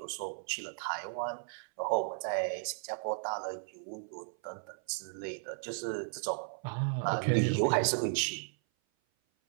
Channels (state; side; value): silent; left; 54 dB below the other